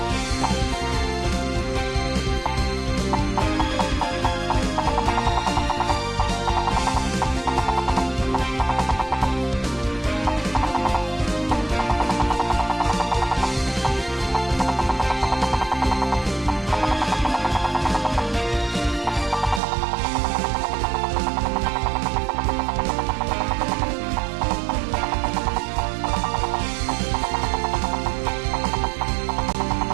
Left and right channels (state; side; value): drops out; left; at 19.6 s